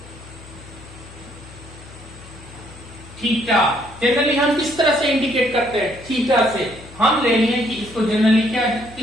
theta. Generally हम किस तरह से इंडिकेट करते हैं, थीटा से। हम ले लिए कि इसको जनरली क्या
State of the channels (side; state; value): left; noise; hum, 19 dB below the sound